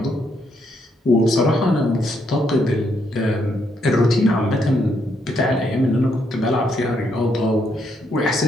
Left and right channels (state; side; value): normal; both; correlation 0.75